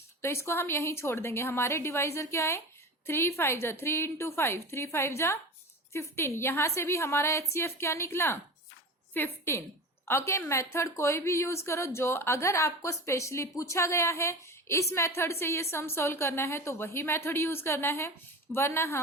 तो इसको हम यहीं छोड़ देंगे। हमारे डिवाइजर क्या है 3 5 जा 3 इंटू 5, 3 5 जा 15। यहां से भी हमारा HCF क्या निकला? 15। ओके, मेथड कोई भी यूज करो, जो अगर आपको स्पेशली पूछा गया है इस मेथड से ये सम सोल्व करना है तो वही मेथड यूज करना है, वरना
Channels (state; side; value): normal; both; correlation 0.30